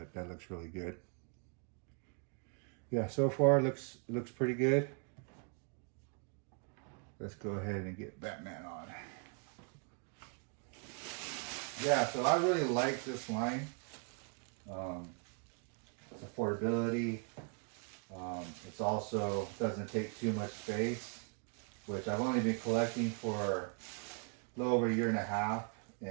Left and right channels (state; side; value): quieter; left; 38.5 dB